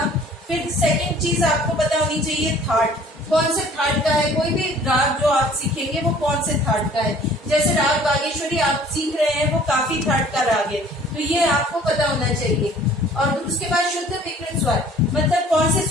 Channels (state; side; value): normal; both; correlation 0.52